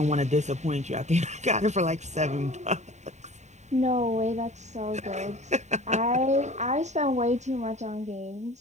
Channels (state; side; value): late; left; 0.34 ms